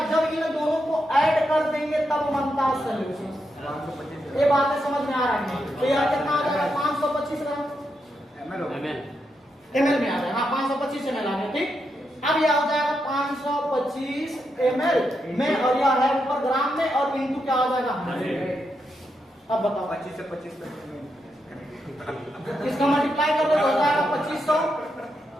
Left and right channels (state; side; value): normal; both; correlation 0.83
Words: जब इन दोनों को ऐड कर देंगे तब बनता है सॉल्यूशन, ये बातें समझ में आ रही है। तो यह कितना आ जाएगा 525 ग्राम ml में आ जाएगा, हाँ 525 ml आ गया, ठीक। अब यह हो जाएगा 525 ml में, और यह है ऊपर ग्राम में, और इनटू क्या हो जाएगा 100। अब बताओ 25 से 25 तक इसका मल्टीप्लाई कर दो हो जाएगा 2500,